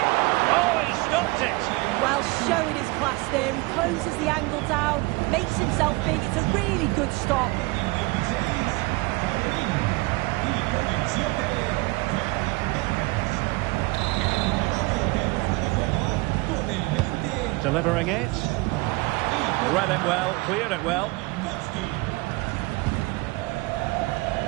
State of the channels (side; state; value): left; quieter; 24.1 dB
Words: Oh, he stopped it! Well, showing his class there. He closes the angle down, makes himself big. It's a really good stop. Delivering it. Read it well, cleared it well.